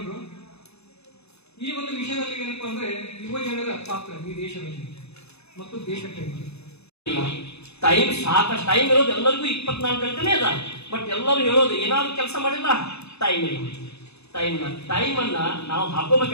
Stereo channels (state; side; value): late; right; 0.80 ms